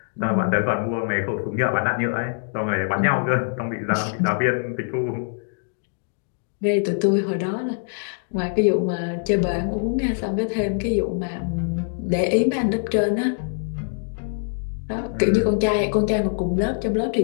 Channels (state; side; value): silent; right; 63 dB below the other